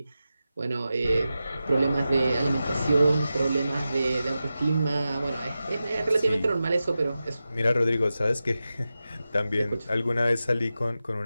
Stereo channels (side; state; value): both; inverted; correlation -0.92